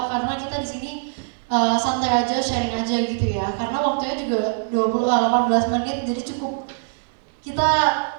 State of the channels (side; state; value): left; silent; digital silence